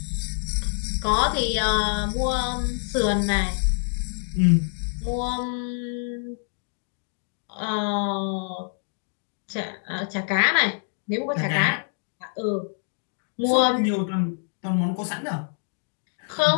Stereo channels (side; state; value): right; silent; 61 dB below the other